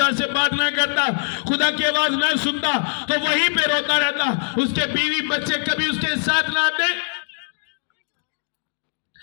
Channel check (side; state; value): right; silent; digital silence